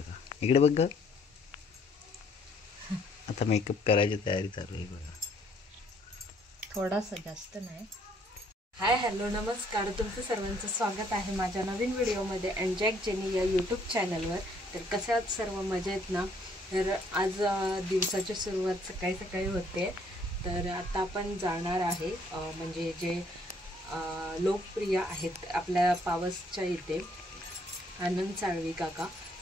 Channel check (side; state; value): both; normal; correlation 0.65